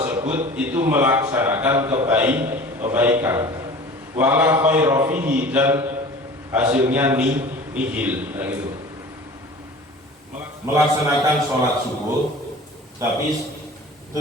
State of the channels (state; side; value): normal; both; correlation 0.41